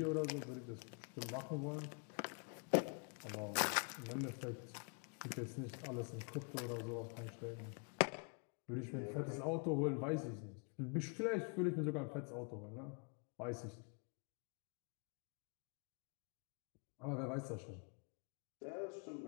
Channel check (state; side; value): quieter; right; 38.7 dB